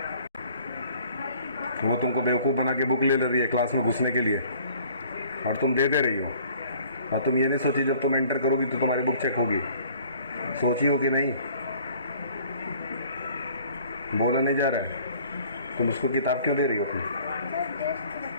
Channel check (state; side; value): inverted; both; correlation -0.54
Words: वो तुमको बेवकूफ़ बना के book ले रही है क्लास में घुसने के लिए, और तुम दे रही हो। और तुम ये नहीं सोची जब तुम एंटर करोगी तो तुम्हारी बुक चेक होगी? सोची हो कि नहीं? बोला नहीं जा रहा है। तुम उसको किताब क्यों दे रही हो अपनी?